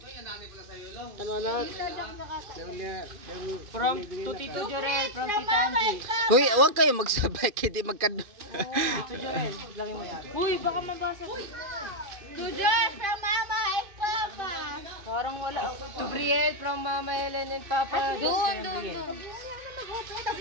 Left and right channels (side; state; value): left; late; 2.5 ms